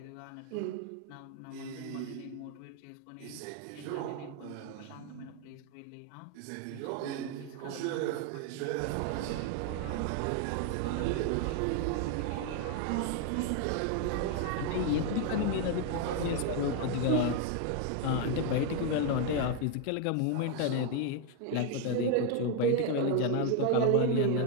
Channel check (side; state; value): both; different; correlation 0.01